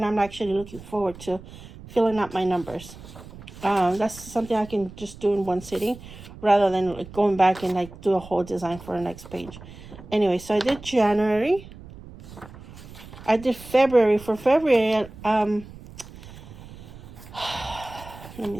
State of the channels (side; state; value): right; noise; rumble, 17 dB below the sound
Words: I'm actually looking forward to filling out my numbers. That's something I can just do in one sitting, rather than going back and do a whole design for the next page. Anyway, so I did January. I did February. For February, let